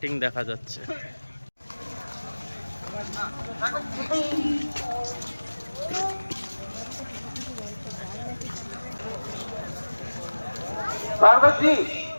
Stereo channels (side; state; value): both; inverted; correlation -1.00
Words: দেখা যাচ্ছে। स्वागत जी,